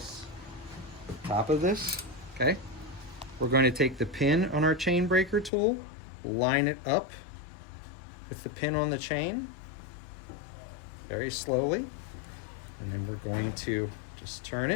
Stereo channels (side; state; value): right; drops out; at 5.5 s